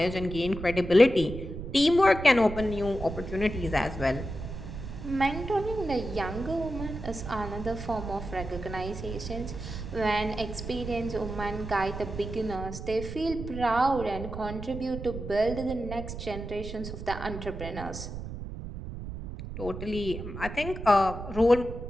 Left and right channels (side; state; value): right; noise; rumble, 8 dB below the sound